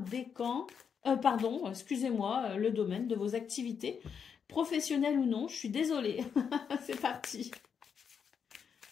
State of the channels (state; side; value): quieter; right; 6.9 dB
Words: Pardon, excusez-moi, le domaine de vos activités, professionnelles ou non, je suis désolée. C'est parti.